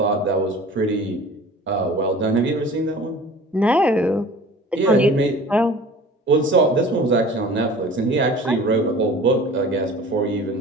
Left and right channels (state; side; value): normal; both; correlation 0.43